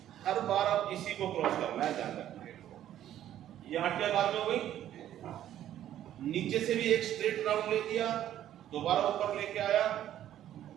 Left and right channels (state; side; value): quieter; left; 11.7 dB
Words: हर बार आप इसी को क्रॉस करना है, ध्यान रखना। ये 8 के बार में हो गई, नीचे से भी एक स्ट्रेट राउंड ले दिया, दोबारा ऊपर लेके आया